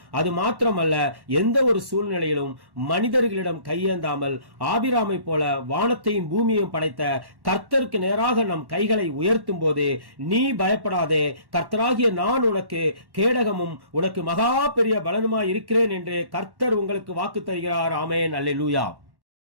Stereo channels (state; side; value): late; left; 1.1 ms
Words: அது மாத்திரமல்ல, எந்த ஒரு சூழ்நிலையிலும் மனிதர்களிடம் கையேந்தாமல் ஆபிராமை போல வானத்தையும் பூமியையும் படைத்த கர்த்தருக்கு நேராக நம் கைகளை உயர்த்தும் போது, நீ பயப்படாதே, கர்த்தராகிய நான் உனக்கு கேடகமும் உனக்கு மகா பெரிய பலனுமாய் இருக்கிறேன் என்று கர்த்தர் உங்களுக்கு வாக்கு தருகிறார். ஆமென், அல்லேலூயா.